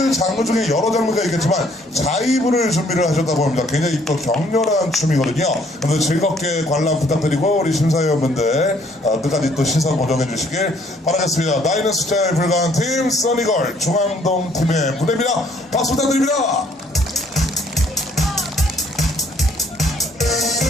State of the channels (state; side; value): normal; both; correlation 0.63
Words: 장르 중에 여러 장르가 있겠지만 자이브를 준비를 하셨다고 합니다. 굉장히 또 격렬한 춤이거든요. 그래서 즐겁게 관람 부탁드리고 우리 심사위원분들 끝까지 또 시선 고정해 주시길 바라겠습니다. 나이는 숫자에 불과한 팀 써니걸 중앙동 팀의 무대입니다. 박수 부탁드립니다.